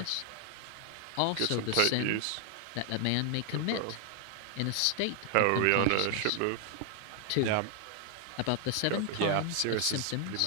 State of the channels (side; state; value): both; different; correlation 0.00